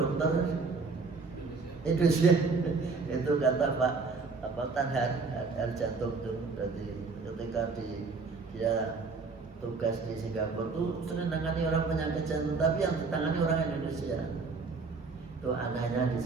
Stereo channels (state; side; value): quieter; left; 4.4 dB